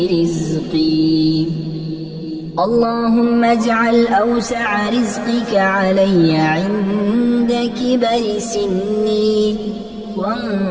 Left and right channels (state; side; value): identical; both; correlation 1.00